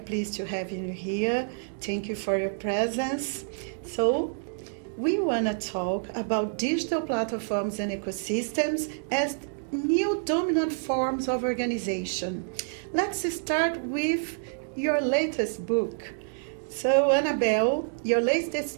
to have you here. Thank you for your presence. So, we want to talk about digital platforms and ecosystems as new dominant forms of organization. Let's start with your latest book. So, Annabelle, your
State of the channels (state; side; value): silent; left; digital silence